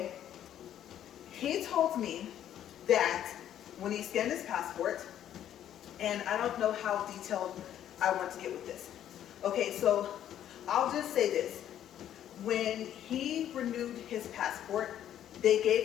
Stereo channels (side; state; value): right; quieter; 10.9 dB